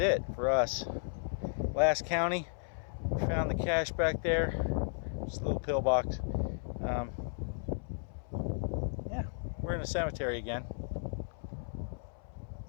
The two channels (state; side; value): silent; right; 55 dB below the other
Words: for us. Last county. We found the cache back there. Just a little pillbox. Yeah, we're in a cemetery again.